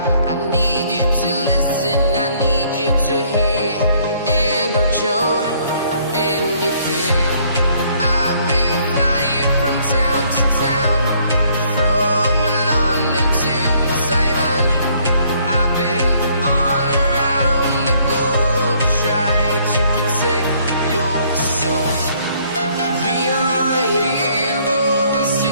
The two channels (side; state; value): both; inverted; correlation -0.64